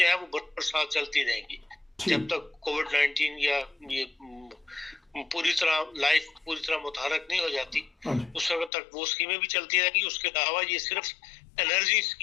ہے وہ برسات چلتی رہیں گی جب تک کووڈ 19 یا یہ پوری طرح لائف پوری طرح متحرک نہیں ہو جاتی، اس وقت تک وہ اسکیمیں بھی چلتی رہیں گی. اس کے علاوہ یہ صرف انرجی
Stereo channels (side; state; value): right; drops out; at 8.7 s